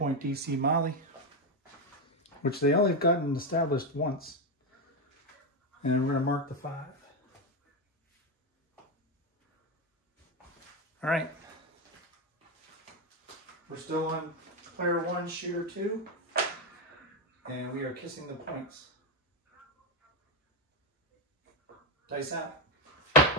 DC Molly, which they only have gotten established once. And we're going to mark the 5. All right. We're still on player 1, shooter 2, and we are kissing the points. Dice out.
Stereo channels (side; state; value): both; normal; correlation 0.08